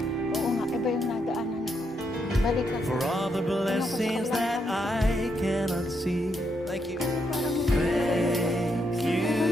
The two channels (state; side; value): normal; both; correlation 0.79